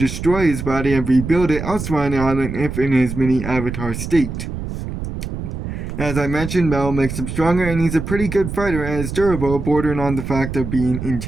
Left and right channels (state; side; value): noise; right; rumble, 6 dB below the sound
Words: his body and rebuild it elsewhere on the island if in his mini avatar state. As I mentioned, metal makes him stronger, and he's a pretty good fighter and is durable, bordering on the fact of being